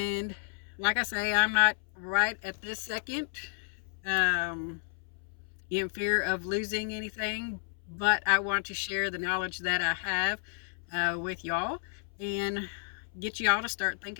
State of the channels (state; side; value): silent; right; 57 dB below the other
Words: like I say, I'm not right at this second in fear of losing anything, but I want to share the knowledge that I have with y'all and get y'all to start